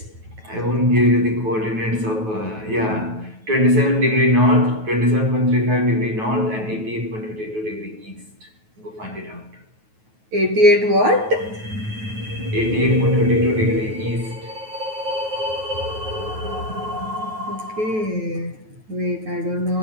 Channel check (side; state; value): left; late; 9.3 ms